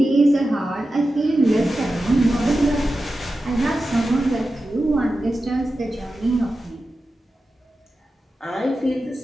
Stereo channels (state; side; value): normal; both; correlation 0.92